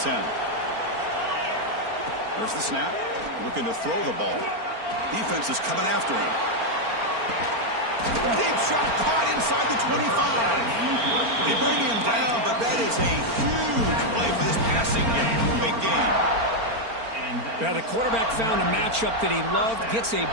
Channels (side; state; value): left; late; 4.4 ms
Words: There's the snap. Looking to throw the ball. Defense is coming after him. Deep shot caught inside the 25. They bring him down, but that is a huge play for this passing game. Big game. Now the quarterback found a matchup that he loved, gets a